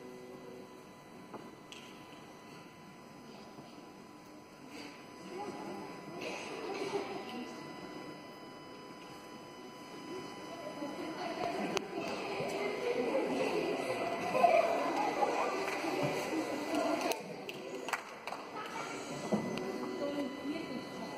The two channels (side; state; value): both; identical; correlation 1.00